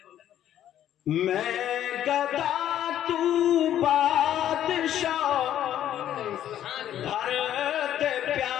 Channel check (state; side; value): quieter; right; 11.2 dB